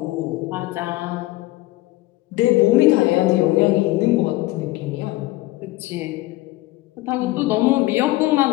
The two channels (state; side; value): quieter; right; 18.4 dB